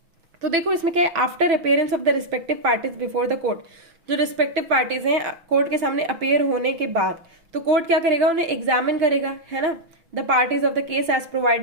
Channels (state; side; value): late; left; 6.0 ms